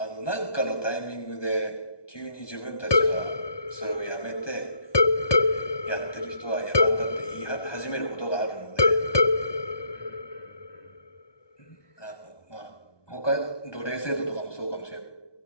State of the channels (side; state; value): right; late; 1.2 ms